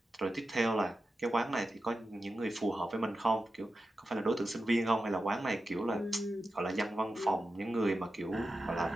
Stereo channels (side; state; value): both; normal; correlation 0.91